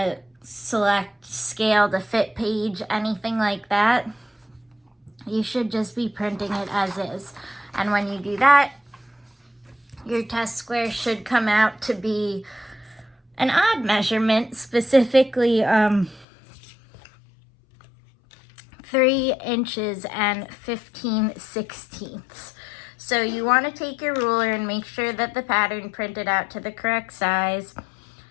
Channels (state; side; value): drops out; right; at 16.2 s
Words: select scale to fit page, anything like that. You should just be printing it as is. And when you do that, your test square should come out to be an odd measurement, specifically 3 inches and 15/16. So you want to take your ruler and make sure that the pattern printed out to the correct size.